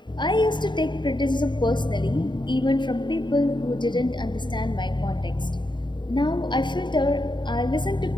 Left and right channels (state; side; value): late; right; 0.22 ms